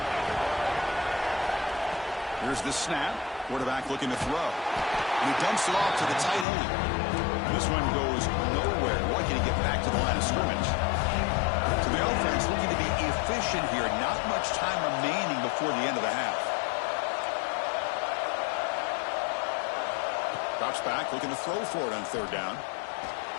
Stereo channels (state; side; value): drops out; right; at 6.5 s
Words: Here's the snap. Quarterback looking to throw. And he dumps it off to the tight end. And this one goes nowhere. Lucky to get back to the line of scrimmage. To the offense, looking to be efficient here. Not much time remaining before the end of the half. Drops back, looking to throw for it on third down.